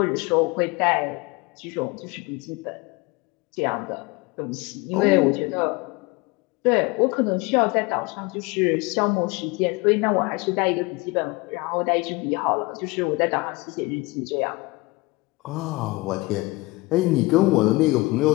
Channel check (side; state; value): right; quieter; 23.4 dB